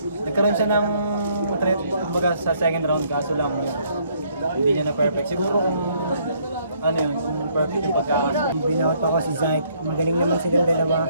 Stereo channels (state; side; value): inverted; both; correlation -0.67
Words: ng threat kumbaga sa second round kaso lang hindi niya na perfect. Siguro kung kung perfect yung pagkakaso. Binawat ako si Syke. Magaling naman silang